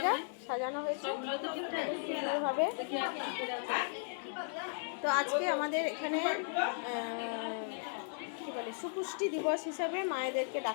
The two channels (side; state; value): right; silent; digital silence